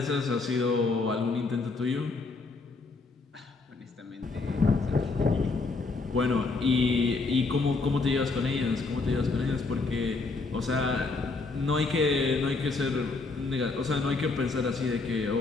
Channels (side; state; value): right; quieter; 3.9 dB